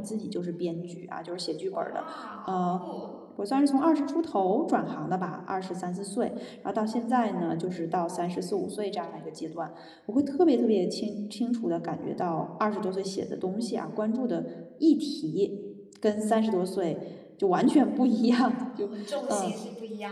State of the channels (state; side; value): identical; both; correlation 1.00